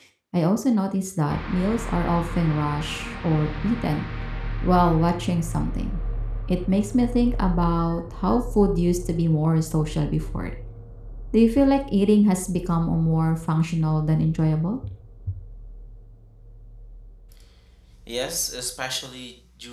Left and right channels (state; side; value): identical; both; correlation 1.00